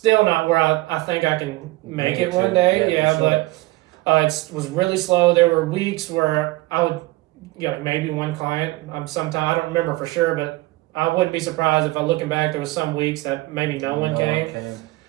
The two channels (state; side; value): quieter; left; 19.9 dB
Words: not where I think I can make it one day. Sure. It was really slow. There were weeks where I would, maybe one client. Sometimes I don't remember for sure, but I wouldn't be surprised if looking back, there was some weeks that maybe no one came.